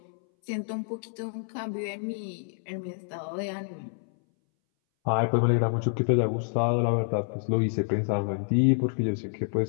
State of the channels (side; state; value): right; silent; 59 dB below the other